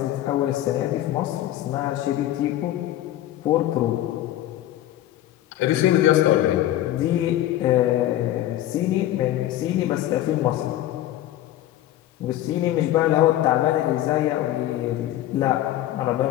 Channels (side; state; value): right; quieter; 13.7 dB